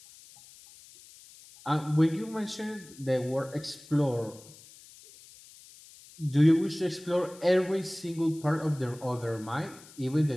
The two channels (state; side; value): noise; left; hiss, 22 dB below the sound